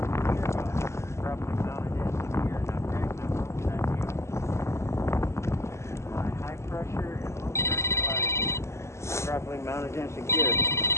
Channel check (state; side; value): late; right; 0.13 ms